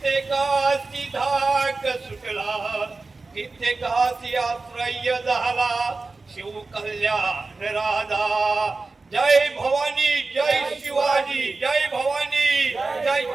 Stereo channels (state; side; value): quieter; left; 3.7 dB